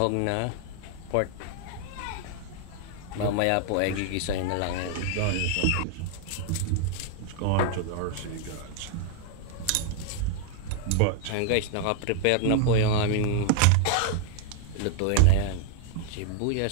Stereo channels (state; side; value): different; both; correlation 0.00